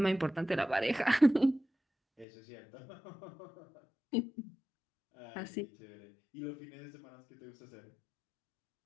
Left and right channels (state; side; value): drops out; right; at 2.2 s